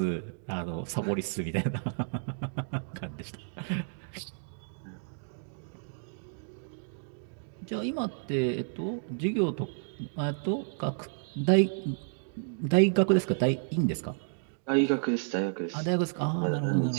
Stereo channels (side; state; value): left; silent; digital silence